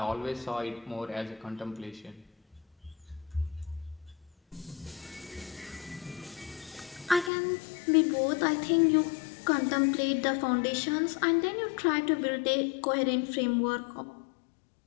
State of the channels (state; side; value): drops out; right; at 7.3 s